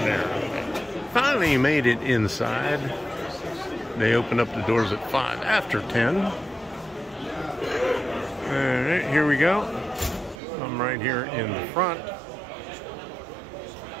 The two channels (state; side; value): drops out; left; at 10.4 s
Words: there. Finally made it inside. They open up the doors at 5 after 10. All right, here we go. I'm right here in the front.